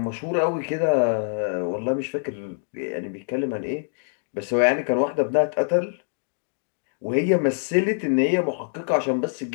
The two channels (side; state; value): right; silent; digital silence